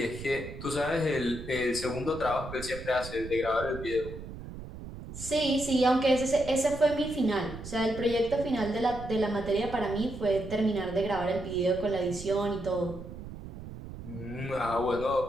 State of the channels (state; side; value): noise; right; rumble, 11 dB below the sound